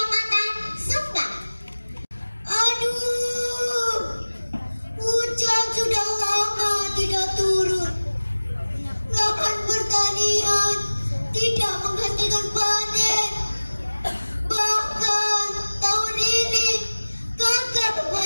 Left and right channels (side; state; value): both; inverted; correlation -1.00